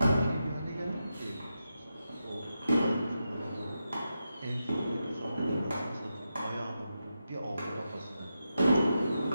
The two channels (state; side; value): inverted; both; correlation -0.88